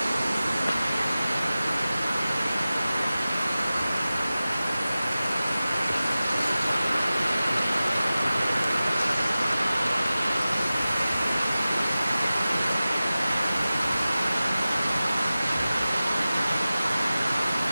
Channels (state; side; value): inverted; both; correlation -0.96